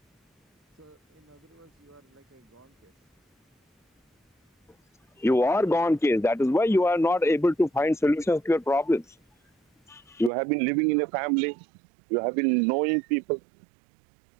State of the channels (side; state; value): left; drops out; at 10.3 s